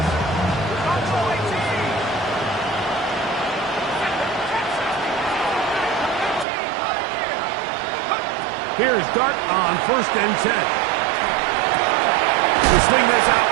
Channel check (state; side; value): drops out; left; at 6.5 s